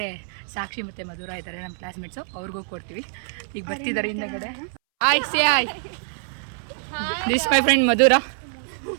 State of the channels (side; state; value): left; silent; 62 dB below the other